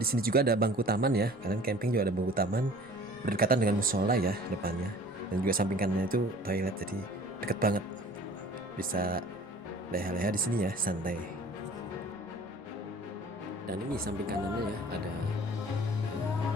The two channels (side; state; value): both; normal; correlation 0.47